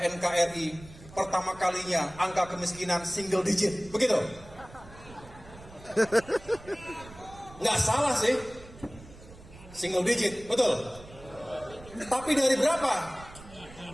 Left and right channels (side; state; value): right; noise; rumble, 19 dB below the sound